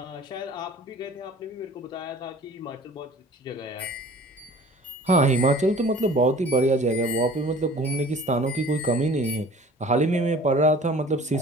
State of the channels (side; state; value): both; normal; correlation 0.46